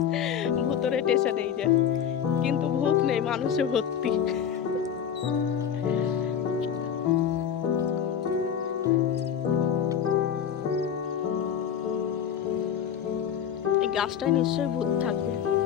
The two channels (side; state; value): right; quieter; 8.5 dB